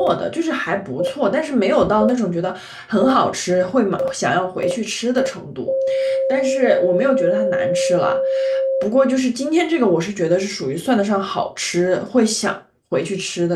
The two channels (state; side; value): identical; both; correlation 1.00